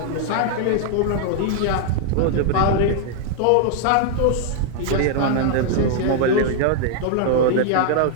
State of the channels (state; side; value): different; both; correlation 0.00